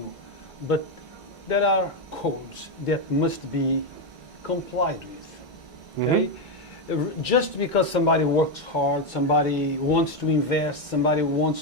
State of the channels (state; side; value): normal; both; correlation 0.07